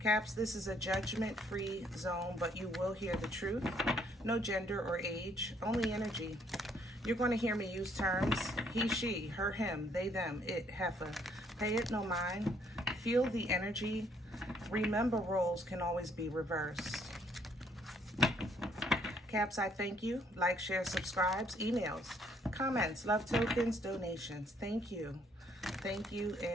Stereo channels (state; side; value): normal; both; correlation 0.66